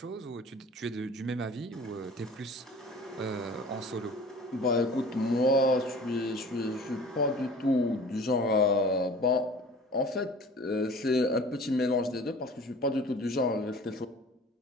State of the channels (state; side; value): normal; both; correlation 0.45